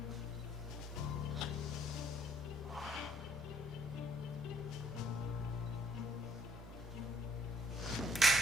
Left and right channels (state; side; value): normal; both; correlation 0.62